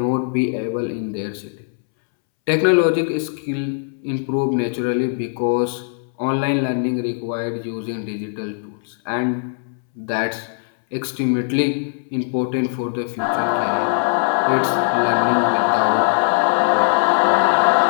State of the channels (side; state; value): right; silent; 65 dB below the other